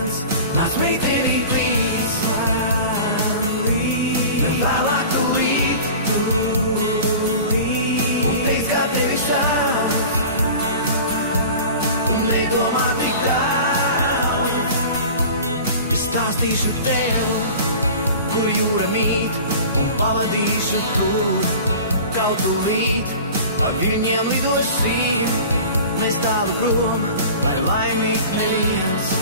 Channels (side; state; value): both; inverted; correlation -0.38